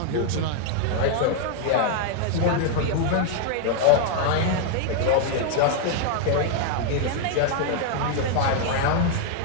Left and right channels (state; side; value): different; both; correlation 0.00